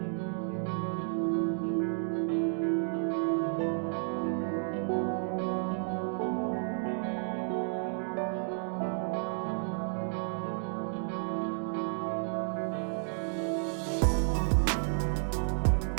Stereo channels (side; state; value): left; silent; 57 dB below the other